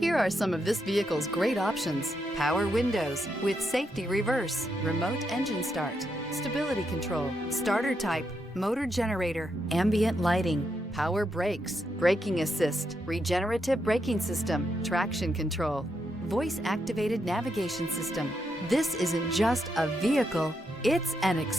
are some of this vehicle's great options: power windows with safety reverse, remote engine start, stability control, starter type, motor generator, ambient lighting, power brakes, braking assist, regenerative braking system, traction control, voice activated navigation system. This isn't just a vehicle, it's an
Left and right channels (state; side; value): normal; both; correlation 0.81